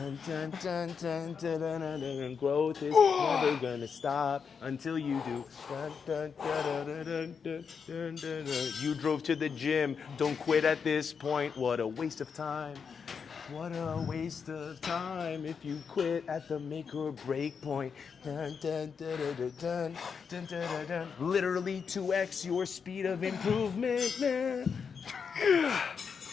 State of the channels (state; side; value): quieter; right; 6.2 dB